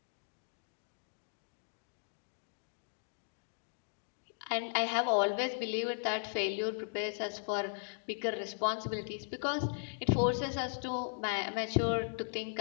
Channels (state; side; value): silent; right; digital silence